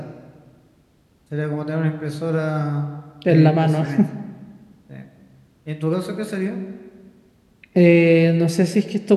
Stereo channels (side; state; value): both; identical; correlation 1.00